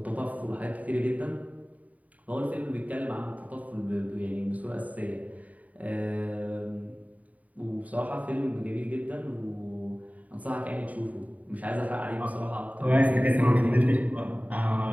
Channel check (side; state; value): left; late; 0.071 ms